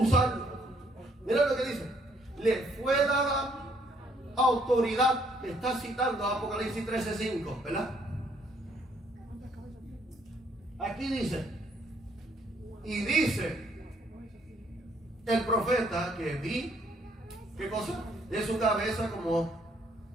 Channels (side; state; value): both; normal; correlation 0.67